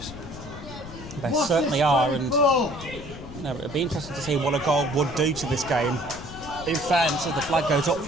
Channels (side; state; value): left; noise; rumble, 14 dB below the sound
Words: They certainly are, and it'd be interesting to see what a goal would do to this game. In fairness, as the flag goes up